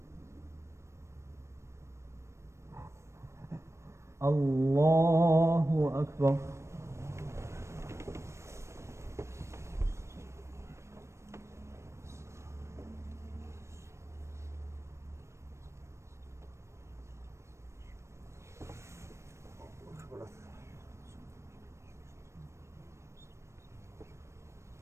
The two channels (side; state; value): left; late; 0.13 ms